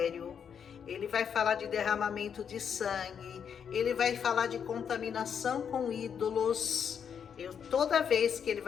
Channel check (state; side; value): quieter; right; 7.5 dB